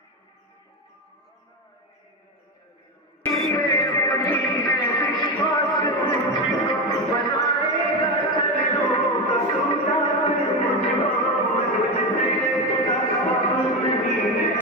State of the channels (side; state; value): both; normal; correlation 0.16